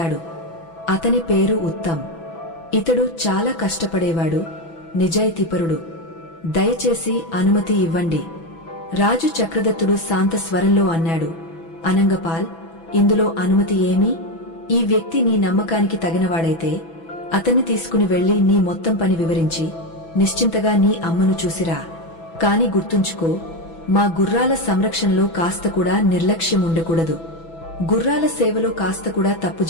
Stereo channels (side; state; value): right; late; 6.0 ms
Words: అతని పేరు ఉత్తమ్. ఇతడు చాలా కష్టపడేవాడు, నిజాయితీపరుడు. దయచేసి అనుమతి ఇవ్వండి. రాజు చక్రదత్తుడు శాంత స్వరంలో అన్నాడు, అనంగపాల్, ఇందులో అనుమతి ఏమీ? ఈ వ్యక్తి నీ నమ్మకానికి తగినవాడైతే అతన్ని తీసుకుని వెళ్లి నీ మొత్తం పని వివరించి నిశ్చింతగా నీ అమ్మను చూసిరా. కాని గుర్తుంచుకో, మా గుర్రాల సంరక్షణలో కాస్త కూడా నిర్లక్ష్యం ఉండకూడదు. గుర్రాల సేవలో కాస్త కూడా తప్పు